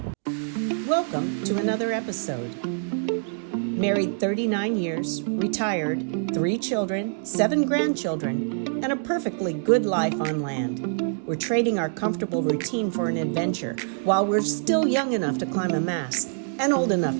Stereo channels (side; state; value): left; silent; digital silence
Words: Welcome to another episode. Married 39 years, retired, 3 children, 7 grandchildren, and a perfectly good life on land. We're trading our comfortable routine for an adventure while we're still young enough to climb a mast and old enough